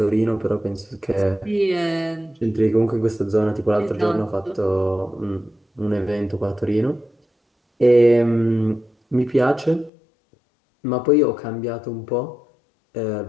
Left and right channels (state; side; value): drops out; right; at 9.9 s